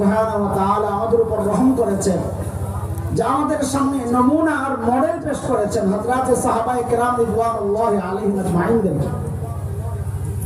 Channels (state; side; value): identical; both; correlation 1.00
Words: ওয়া তাআলা আমাদের উপর রহম করেছেন যে আমাদের সামনে নমুনা আর মডেল পেশ করেছেন হযরতে সাহাবায়ে কেরাম রিদওয়ানুল্লাহি আলাইহিম আজমাইন।